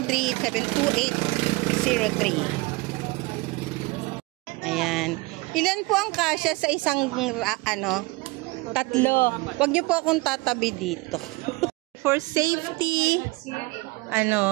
Ayan. Ilan po ang kasya sa isang, tatlo. Huwag niyo po akong tatabi dito. For safety,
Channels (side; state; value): left; quieter; 24.0 dB